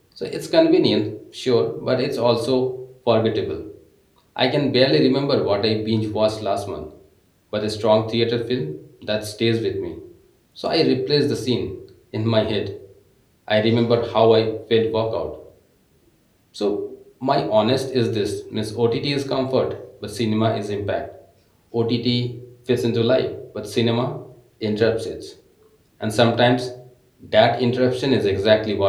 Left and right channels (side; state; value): both; identical; correlation 1.00